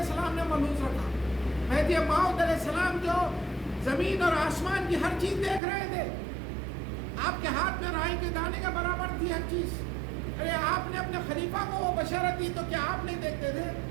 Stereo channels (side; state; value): left; drops out; at 5.6 s